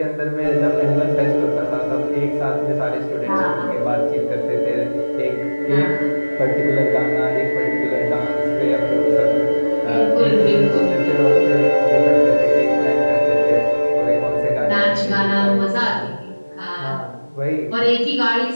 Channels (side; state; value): both; inverted; correlation -1.00